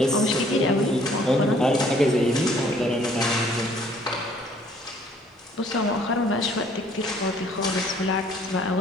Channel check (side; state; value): both; normal; correlation 0.60